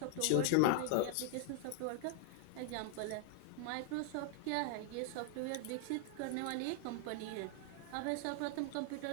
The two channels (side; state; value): both; different; correlation 0.00